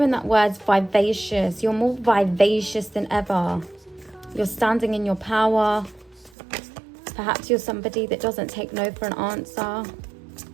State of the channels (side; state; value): left; drops out; at 6.3 s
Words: that word vivacious. You're more vivacious than ever. You're standing in your power. Perhaps you're somebody that doesn't take no for an answer.